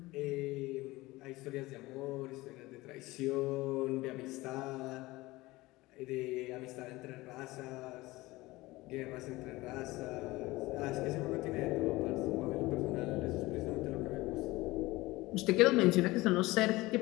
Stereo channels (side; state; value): right; quieter; 20.0 dB